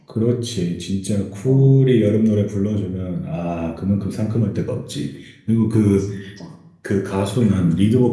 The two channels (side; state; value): both; identical; correlation 1.00